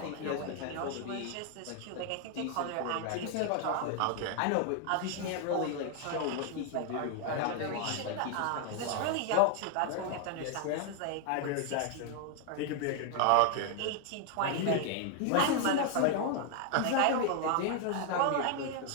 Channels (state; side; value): different; both; correlation 0.00